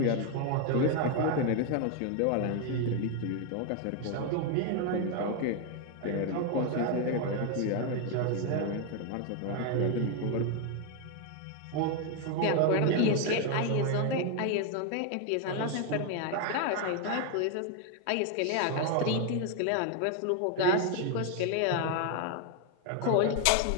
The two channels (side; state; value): both; different; correlation 0.01